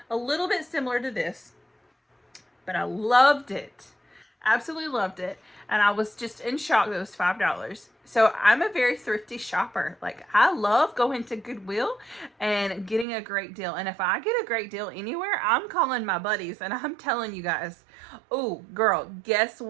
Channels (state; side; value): drops out; left; at 13.1 s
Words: A little bit similar to this, but I loved it. Absolutely loved it. And I was just in shock that it was $5. So I'm a very thrifty shopper. Like, I love going to Goodwill and getting a great deal. And if I get a great deal anywhere, I'm calling my buddies and I'm telling you guys, oh girl, guess